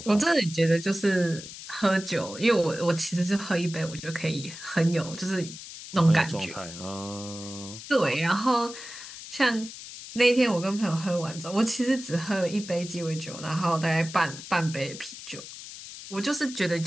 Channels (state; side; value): noise; left; hiss, 13 dB below the sound